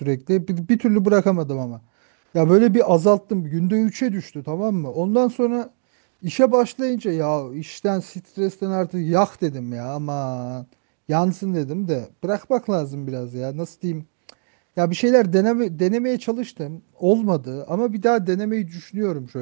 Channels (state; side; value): silent; left; 62 dB below the other